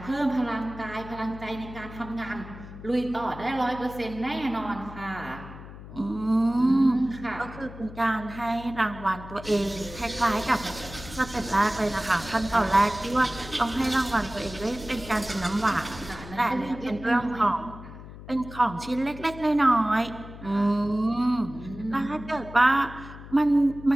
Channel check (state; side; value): noise; left; hum, 15 dB below the sound